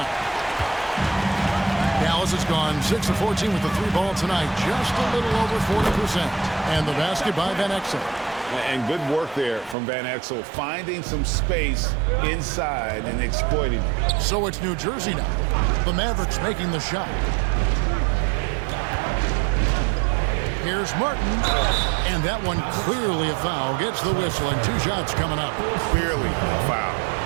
Dallas has gone 6 of 14 with the 3 ball tonight. Just a little over 40%. And the basket by Van Exel. And good work there from Van Exel, finding some space inside and exploiting it. So it's New Jersey now. The Mavericks making the shot. Here's Martin. And that one clearly a foul. Gets the whistle and 2 shots coming up. Clearly a foul.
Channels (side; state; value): left; drops out; at 9.8 s